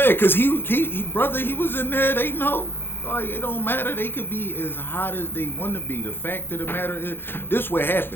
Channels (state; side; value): late; right; 0.10 ms